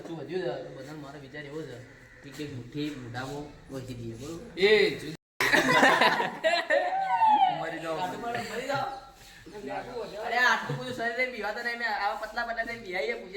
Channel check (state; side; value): identical; both; correlation 1.00